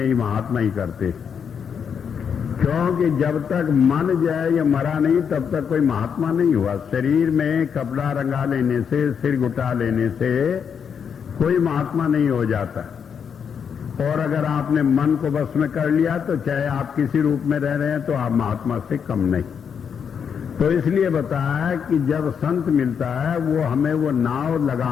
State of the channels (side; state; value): right; quieter; 7.1 dB